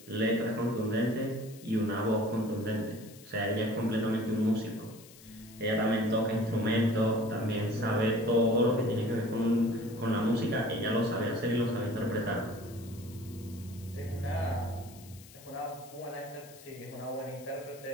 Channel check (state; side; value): noise; left; hiss, 21 dB below the sound